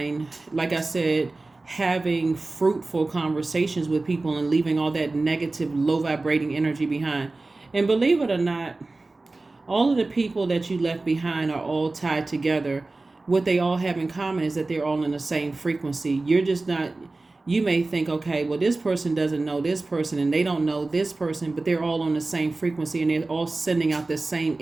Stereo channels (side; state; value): left; quieter; 3.3 dB